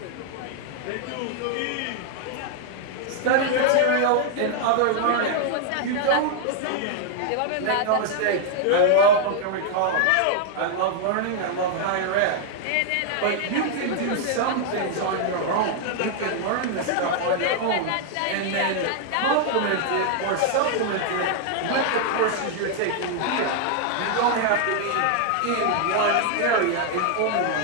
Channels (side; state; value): both; different; correlation 0.00